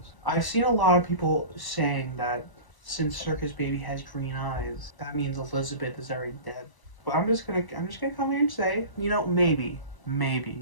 I've seen a lot of people saying that since Circus Baby has green eyes, that means Elizabeth is already dead. But I'm just gonna come here and say, you know, maybe in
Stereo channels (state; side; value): late; right; 1.0 ms